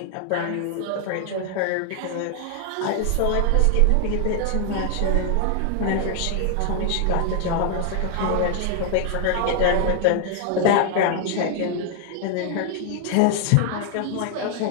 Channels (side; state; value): both; different; correlation 0.00